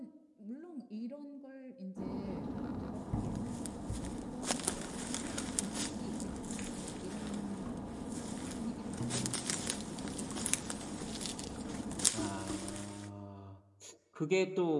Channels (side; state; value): both; identical; correlation 1.00